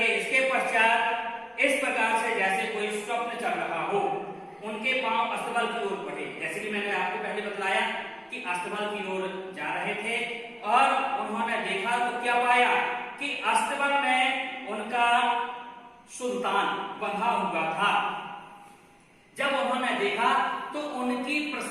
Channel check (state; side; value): identical; both; correlation 1.00